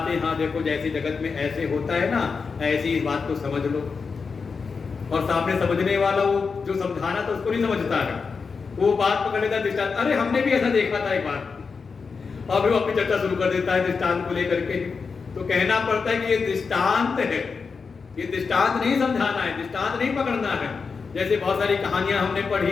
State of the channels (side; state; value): right; quieter; 5.1 dB